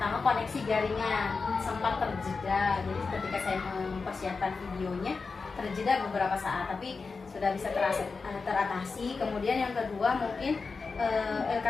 koneksi jaringan sempat terjeda. Jadi ketika saya mempersiapkan videonya terjeda beberapa saat, tapi sudah bisa teratasi. Kemudian yang kedua mungkin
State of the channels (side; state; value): right; quieter; 4.5 dB